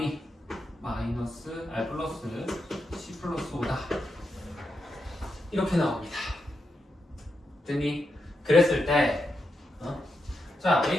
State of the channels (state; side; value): normal; both; correlation 0.85